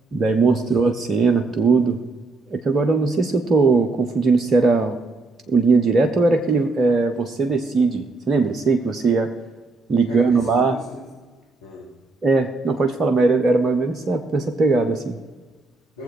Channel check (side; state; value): left; quieter; 3.5 dB